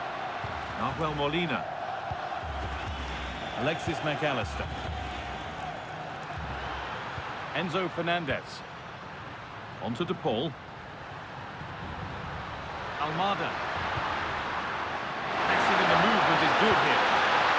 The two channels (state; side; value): identical; both; correlation 1.00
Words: Nahuel Molina. Alexis McAllister. Enzo Fernandez. On to De Paul. Almada. Passing in the movement is good here.